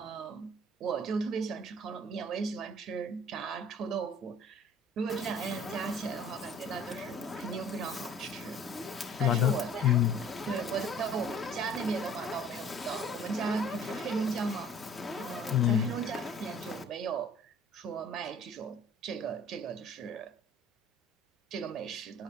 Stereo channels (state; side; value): normal; both; correlation 0.51